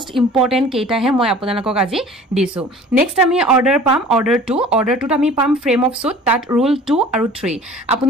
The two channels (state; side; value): normal; both; correlation 0.46